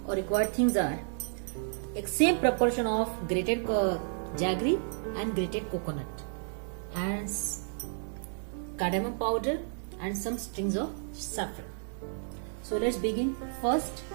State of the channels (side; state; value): left; silent; digital silence